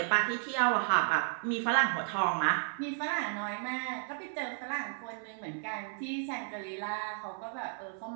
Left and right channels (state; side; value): silent; left; 56 dB below the other